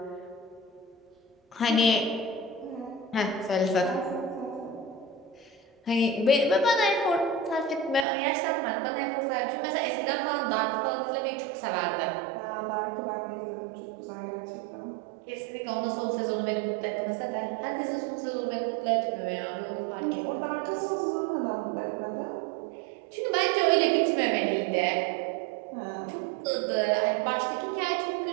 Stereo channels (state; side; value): drops out; left; at 8.1 s